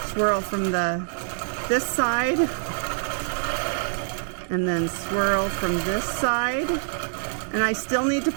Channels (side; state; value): left; silent; 61 dB below the other